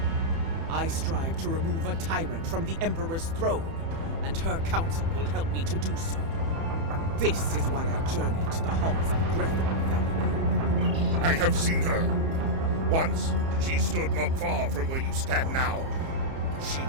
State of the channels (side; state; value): left; late; 30 ms